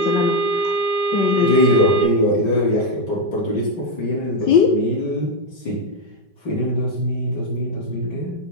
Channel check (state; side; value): late; right; 5.2 ms